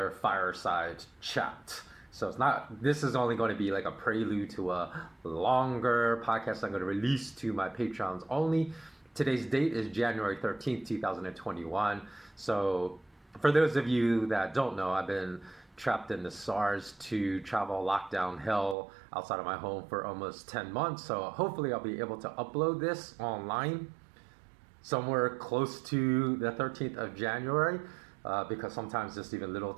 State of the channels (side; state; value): left; drops out; at 18.8 s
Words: fireside chat. So this is only going to be like a prelude to a longer podcast I'm going to release to my Patreons only. Today's date is January 13th, 2021. So for those of you that don't know, I've been trapped in the SARS-2 travel lockdown hell outside of my home for almost 10 months. So hopefully I'll be able to upload this online somewhere close to the 13th of January, because sometimes just even little